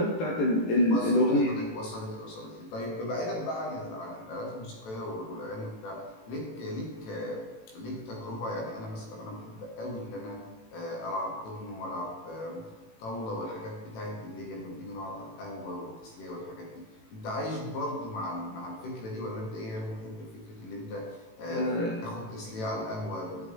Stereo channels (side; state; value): right; late; 18 ms